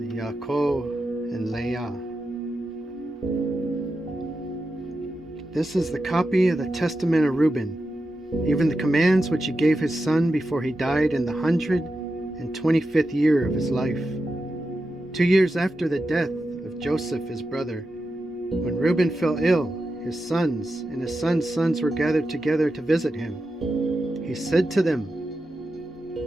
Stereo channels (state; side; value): normal; both; correlation 0.90